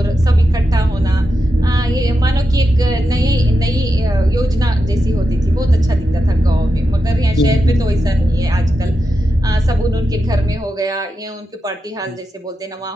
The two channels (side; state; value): both; normal; correlation 0.88